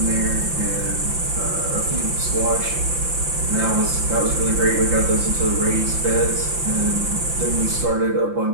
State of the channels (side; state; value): left; late; 5.8 ms